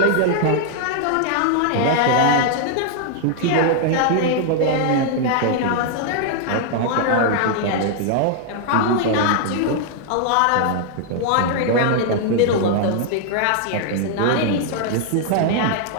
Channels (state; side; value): different; both; correlation 0.00